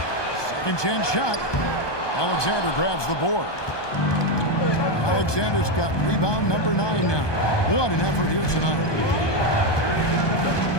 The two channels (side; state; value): right; late; 1.2 ms